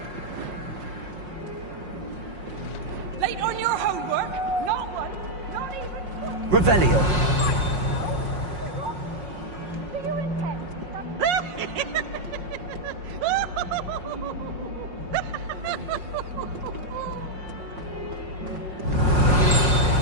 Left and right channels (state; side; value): late; left; 5.5 ms